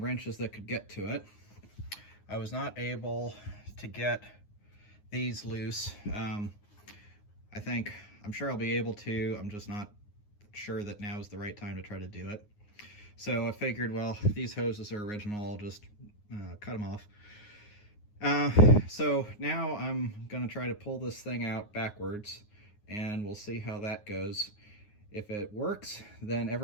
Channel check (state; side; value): late; right; 9.6 ms